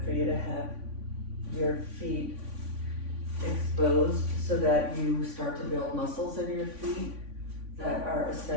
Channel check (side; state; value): left; late; 3.5 ms